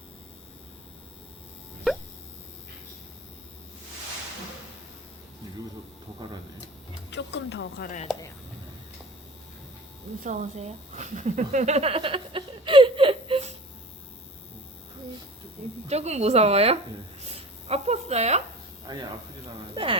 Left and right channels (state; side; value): normal; both; correlation 0.38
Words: 여기서 더 갈아야 돼. 조금 더 갈아야 돼요. 무서우세요? 조금 무서워요? 네. 아팠어요? 아니 아프진 않아요.